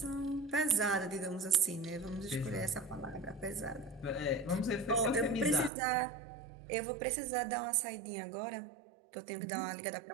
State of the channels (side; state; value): left; drops out; at 5.7 s